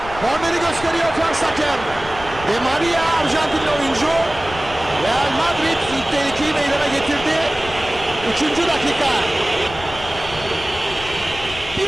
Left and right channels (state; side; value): noise; left; rumble, 14 dB below the sound